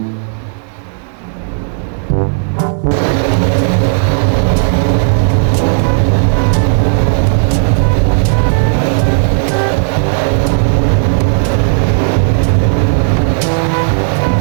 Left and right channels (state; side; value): silent; left; digital silence